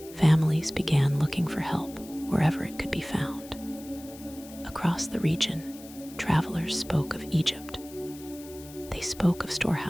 Families began looking for help wherever it could be found. Across the region, travelers spoke of Egypt. They spoke of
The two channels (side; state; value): left; noise; hiss, 19 dB below the sound